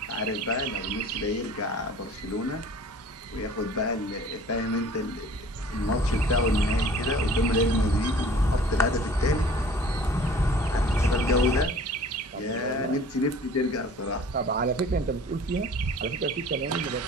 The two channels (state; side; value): normal; both; correlation 0.48